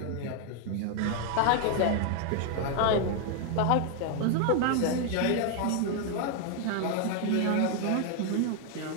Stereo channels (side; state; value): both; different; correlation 0.00